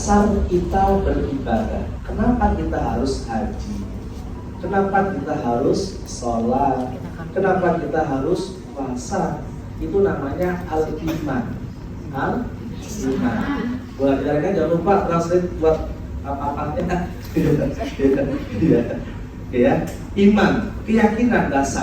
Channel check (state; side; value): identical; both; correlation 1.00